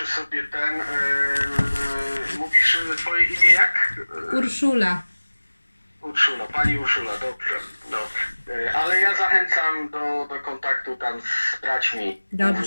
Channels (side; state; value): both; inverted; correlation -1.00